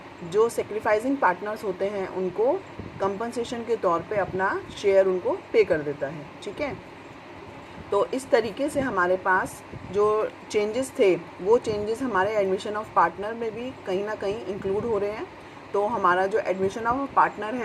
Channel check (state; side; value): identical; both; correlation 1.00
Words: जो सेक्रीफाइसिंग पार्टनर्स होते हैं उनको कंपनसेशन के तौर पे अपना शेयर उनको पे कर देता है। ठीक है, तो इस तरीके से हमारे पास जो चेंजेस थे वो चेंजेस हमारे एडमिशन ऑफ पार्टनर में भी कहीं ना कहीं इंक्लूड हो रहे हैं। तो हमारा जो एडमिशन ऑफ पार्टनर